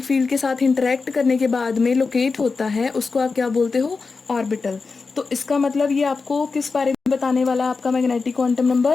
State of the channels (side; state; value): right; quieter; 4.4 dB